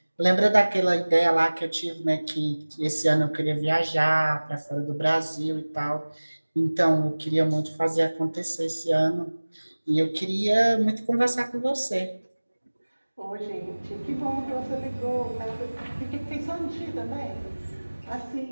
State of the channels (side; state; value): both; inverted; correlation -1.00